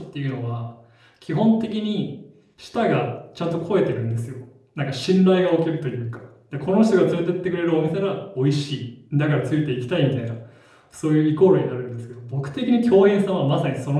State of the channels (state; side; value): identical; both; correlation 1.00